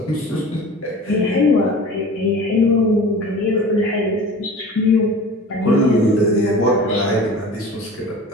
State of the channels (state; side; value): normal; both; correlation 0.39